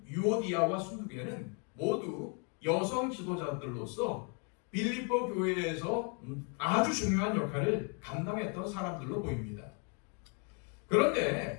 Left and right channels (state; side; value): quieter; right; 37.6 dB